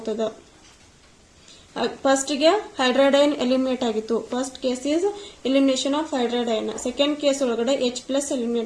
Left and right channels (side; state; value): both; identical; correlation 1.00